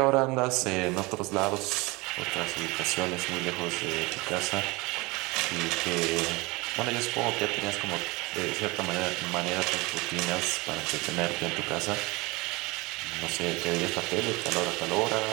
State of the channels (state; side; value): quieter; left; 24.3 dB